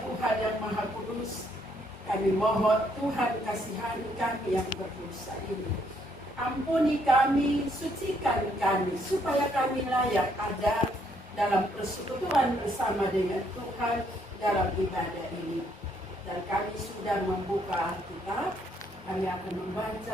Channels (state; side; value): normal; both; correlation 0.70